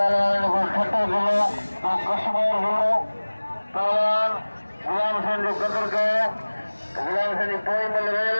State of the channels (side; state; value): both; inverted; correlation -1.00